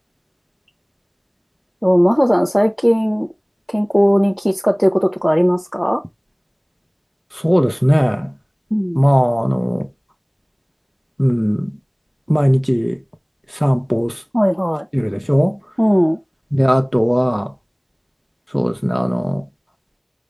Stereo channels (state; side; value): identical; both; correlation 1.00